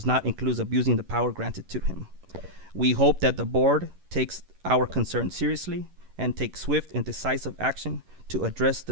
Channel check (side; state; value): left; late; 11 ms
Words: not include abusing the power granted to him. We hope that the board takes our concern seriously and takes swift and decisive action to address